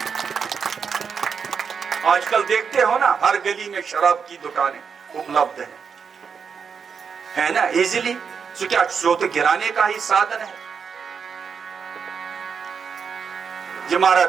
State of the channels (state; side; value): quieter; left; 6.3 dB